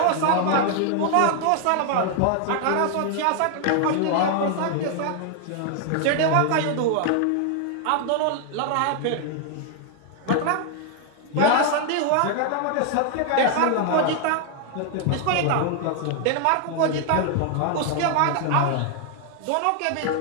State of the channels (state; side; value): different; both; correlation 0.00